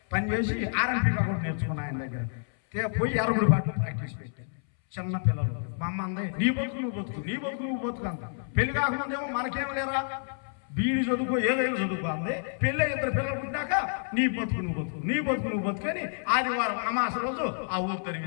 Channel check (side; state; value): right; silent; 59 dB below the other